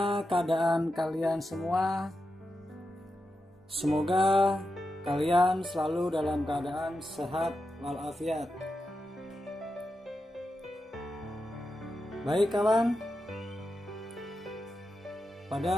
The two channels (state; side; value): normal; both; correlation 0.89